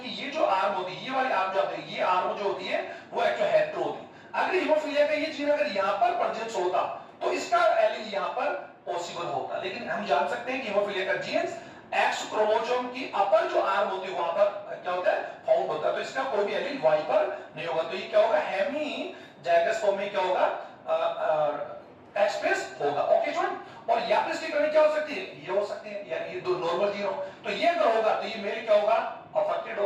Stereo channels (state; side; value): identical; both; correlation 1.00